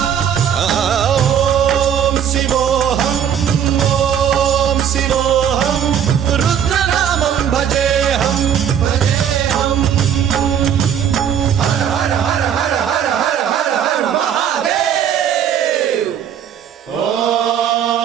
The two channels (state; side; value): quieter; left; 8.8 dB